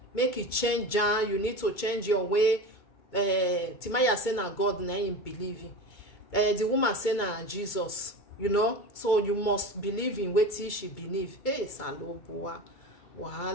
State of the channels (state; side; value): late; right; 2.3 ms